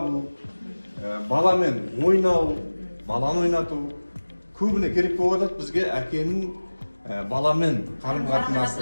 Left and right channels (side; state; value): both; inverted; correlation -1.00